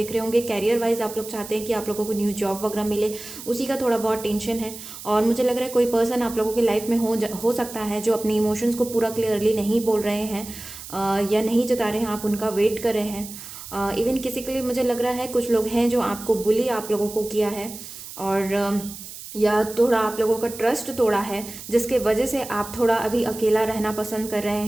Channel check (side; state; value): right; noise; hiss, 13 dB below the sound